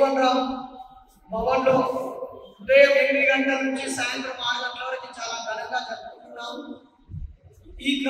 రామ్ భవన్లో ఉదయం 8 గంటల నుంచి సాయంత్రం 6 గంటల వరకు చాలా ఘనంగా జరుపుకుంటున్నాము. ఈ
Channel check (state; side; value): identical; both; correlation 1.00